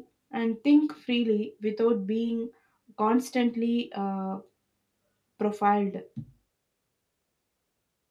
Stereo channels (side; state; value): both; identical; correlation 1.00